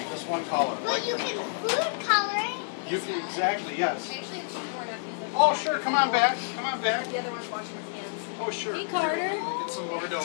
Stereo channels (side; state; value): right; silent; digital silence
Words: Just one color. Well, you can food color it. You can, exactly, yes. Actually, it's more enough. Oh, sure. Come on back. Come on back. The other one's washing his hands. Oh, sure. Hey, Carter. Get some more dough.